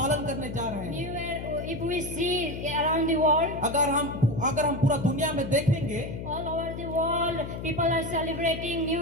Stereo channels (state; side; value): noise; left; hum, 8 dB below the sound